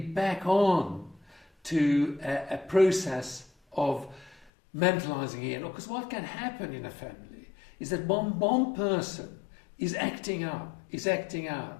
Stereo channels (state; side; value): drops out; right; at 4.5 s